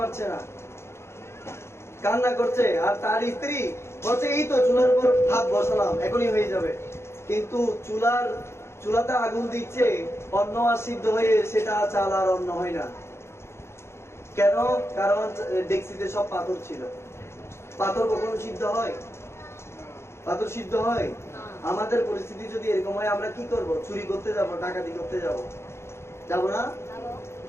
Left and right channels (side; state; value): right; late; 0.13 ms